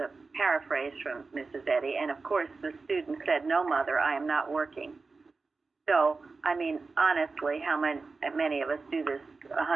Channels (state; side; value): quieter; left; 4.1 dB